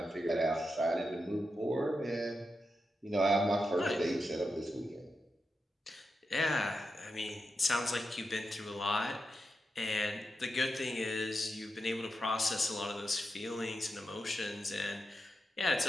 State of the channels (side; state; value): both; normal; correlation 0.88